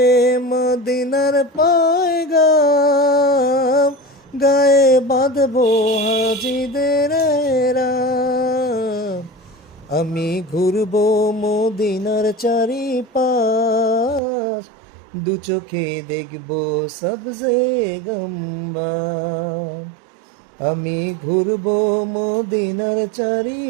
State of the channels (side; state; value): left; drops out; at 14.2 s